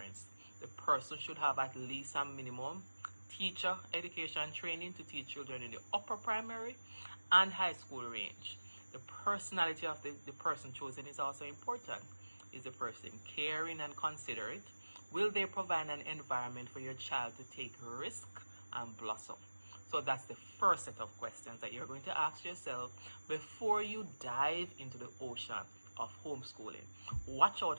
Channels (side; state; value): both; inverted; correlation -1.00